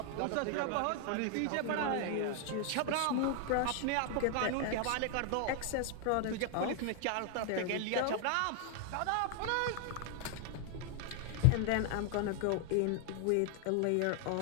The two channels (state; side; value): different; both; correlation 0.00